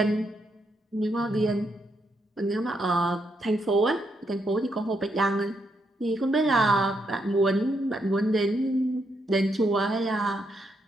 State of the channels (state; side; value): normal; both; correlation 0.78